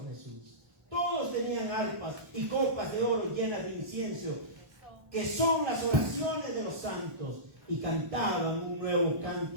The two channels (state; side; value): late; left; 1.1 ms